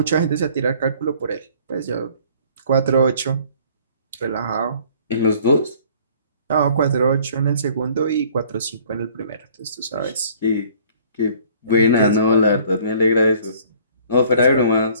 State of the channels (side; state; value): both; inverted; correlation -0.55